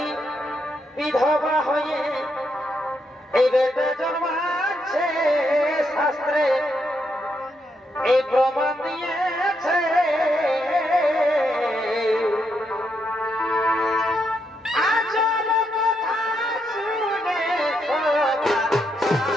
বিধবা হয়ে এই বেটা জন্মাচ্ছে, শাস্ত্রে এই প্রমাণ দিয়েছে। আজব কথা শুনে সবার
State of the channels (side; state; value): both; normal; correlation 0.79